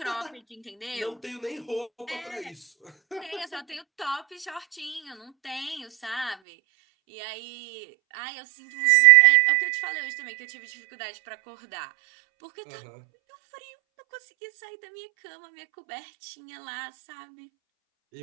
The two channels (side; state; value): left; drops out; at 6.4 s